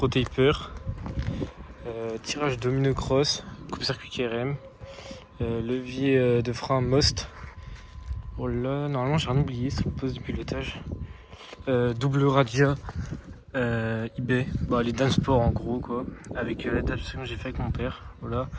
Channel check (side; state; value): both; identical; correlation 1.00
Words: Taper. Tirage domino cross, coupe-circuit KRM. Levier de frein Most. Oh là, normalement j'ai rien oublié sur le poste de pilotage. Double radia eBay, les Dansport en gros quoi, avec l'adaptation que j'ai fait avec mon père, voilà.